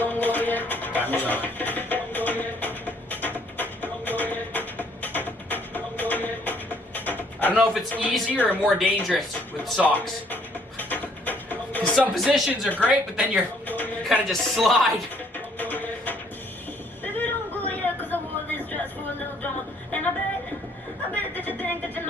Timer's on. I don't know if it's easier or more dangerous with socks. Because some positions are great, but then you kind of just slide.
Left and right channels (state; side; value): normal; both; correlation 0.64